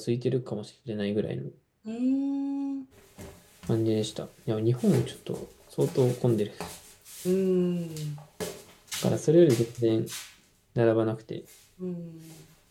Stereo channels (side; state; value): both; identical; correlation 1.00